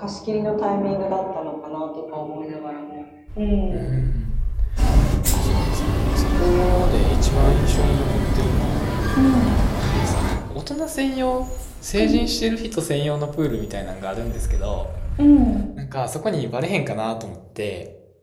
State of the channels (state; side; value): identical; both; correlation 1.00